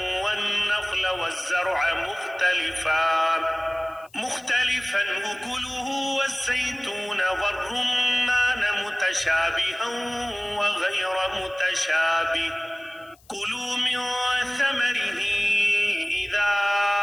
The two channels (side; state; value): left; noise; hiss, 30 dB below the sound